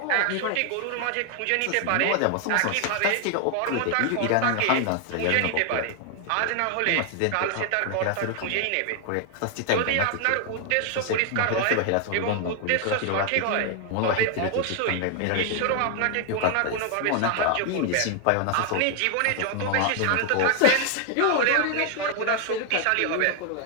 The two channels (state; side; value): different; both; correlation 0.00